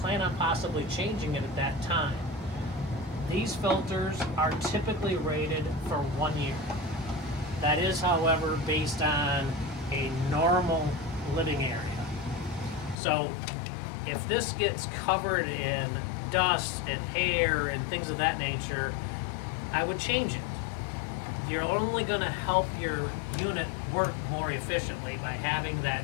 on possibly changing it at that time. These filters are typically rated for 1 year. That is, however, based on a normal living area. So if this gets covered in dust and hair and things of that nature, I would change it. You're only going to help your unit work more efficiently by having that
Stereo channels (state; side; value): drops out; right; at 13.0 s